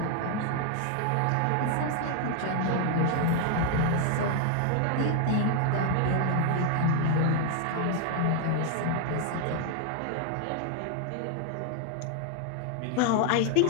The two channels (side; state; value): both; different; correlation 0.00